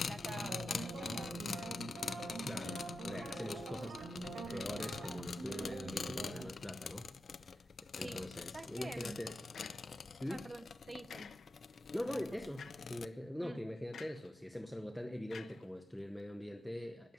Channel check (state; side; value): normal; both; correlation 0.90